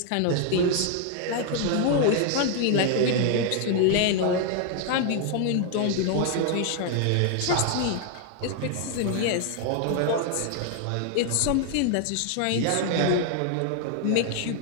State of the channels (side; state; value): both; different; correlation 0.00